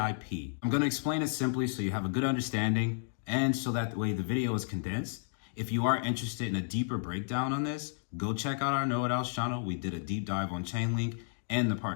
I'm going to explain it simply so you have a good understanding and so that way the video is condensed. If you are interested in a deeper breakdown on this, go check out our Know It Alls channel. We did a deep dive on Chainlink and the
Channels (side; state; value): right; silent; digital silence